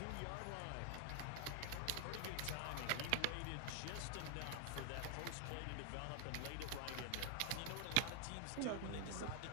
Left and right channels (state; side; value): different; both; correlation 0.00